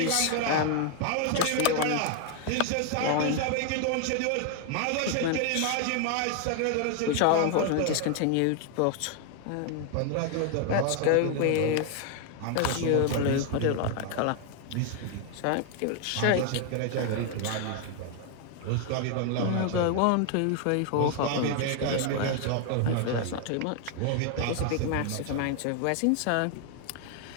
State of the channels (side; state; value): both; different; correlation 0.00